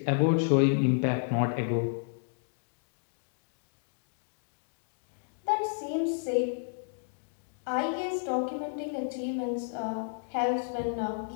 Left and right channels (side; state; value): right; silent; digital silence